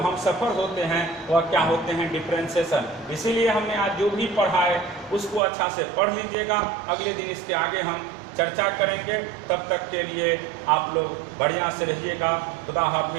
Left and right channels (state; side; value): drops out; left; at 5.4 s